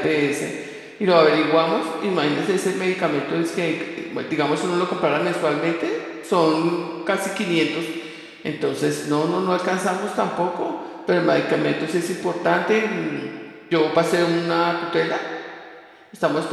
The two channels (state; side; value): identical; both; correlation 1.00